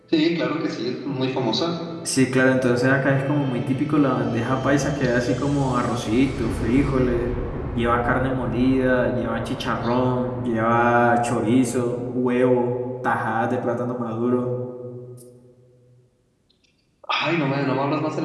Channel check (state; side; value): identical; both; correlation 1.00